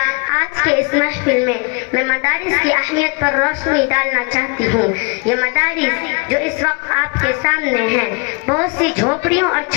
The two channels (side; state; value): right; quieter; 30.9 dB